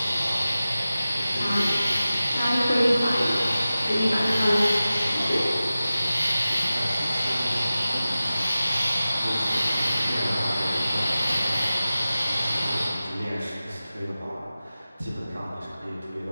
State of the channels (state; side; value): inverted; both; correlation -0.95